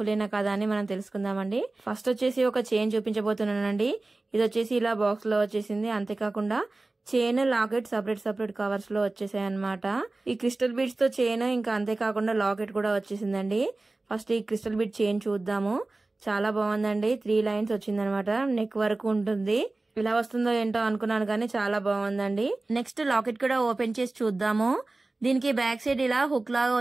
అయినా కదా అని మనం తెలుసుకుందామండి. ఫస్ట్ వచ్చేసి ఒక చైన్ చూపించబోతున్నానండి. ఇది వచ్చేసి ఇలా బాక్స్ లో వచ్చేసింది. అంతేకాకుండా చైన్, లాకెట్ సపరేట్ కవర్స్ లో వచ్చేసాయి అనమాట. ఈ క్రిస్టల్ బీడ్స్ తో చైన్, ఇంకా అంతేకాకుండా లాకెట్ కూడా వచ్చేసిందండి. ఫస్ట్ ఈ క్రిస్టల్ బీడ్ చైన్ చూద్దాము. చాలా బాగుందండి. 3 లైన్స్ వచ్చిందనమాట. నెక్ వరకు ఉంటుంది. ఇలా వస్తుందో ఏంటో అనుకున్నాను కానీ చాలా బాగుందండి. నెక్స్ట్ లాకెట్ కూడా ఓపెన్ చేసి చూద్దాము. దీనికి బ్యాక్ సైడ్ ఇలా హుక్ లాగా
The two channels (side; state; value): left; quieter; 3.1 dB